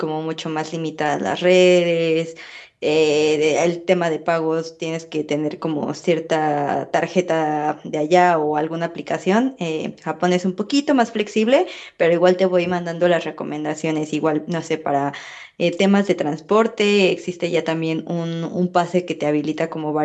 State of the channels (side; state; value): both; identical; correlation 1.00